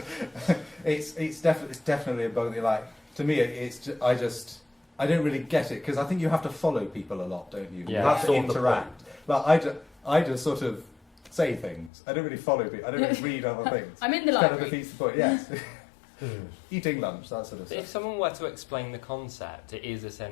It's definitely a bug. To me, I don't really get it because I think you have to follow people a lot, don't you? Yeah. You have to interact. I just sort of say things. I don't really follow people. I don't really read other things. I'm in the library. library. Kind of defeats the point. Yes. Eating lunch, that sort of stuff. If someone were to explain the concept, it is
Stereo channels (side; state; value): right; drops out; at 11.9 s